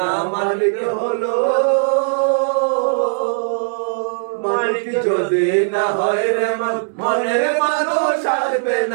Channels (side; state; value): left; silent; digital silence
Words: মালিক হলো, মালিক যদি না হয় রে মনের মানুষ আসবে